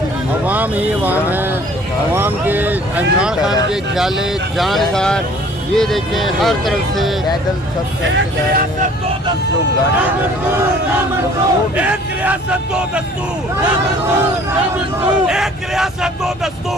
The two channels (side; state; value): both; normal; correlation 0.53